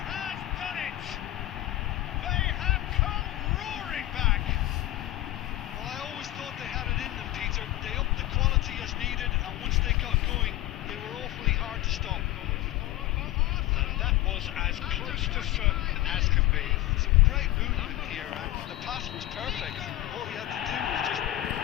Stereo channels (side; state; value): right; quieter; 15.8 dB